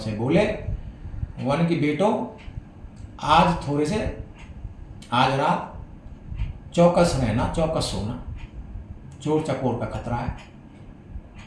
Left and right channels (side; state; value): both; identical; correlation 1.00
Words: बोले, वन की बेटो, आज रात चौकस रहना, चौकस सोना, चोर चकोर का खतरा है।